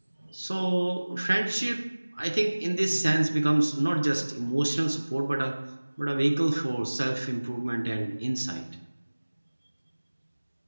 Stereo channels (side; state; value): both; inverted; correlation -1.00